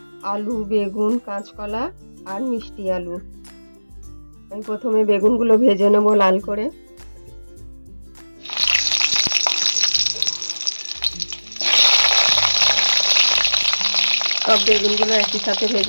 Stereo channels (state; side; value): inverted; both; correlation -1.00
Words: আলু, বেগুন, কাঁচকলা আর মিষ্টি আলু। আমি প্রথমে বেগুনগুলো ভেজে নেব লাল করে। সব বেগুনগুলো একই সাথে